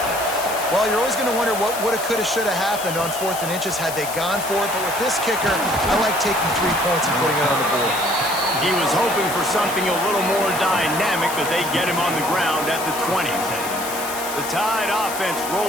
Well, you're always going to wonder what woulda, coulda, shoulda happened on 4th and inches had they gone for it. But with this kicker, I like taking 3 points and putting it on the board. He was hoping for something a little more dynamic, but they get him on the ground at the 20. The Tide offense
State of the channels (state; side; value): noise; left; hiss, 8 dB below the sound